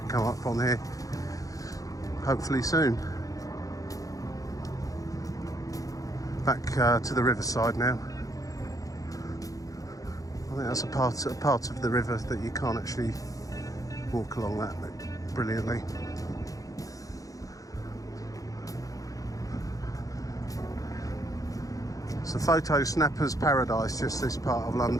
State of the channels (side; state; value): right; late; 0.17 ms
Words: come up on here, hopefully soon. Back to the riverside now. I think that's a part of the river that you can't actually walk along that brilliantly. It's a photo snapper's paradise, just this part of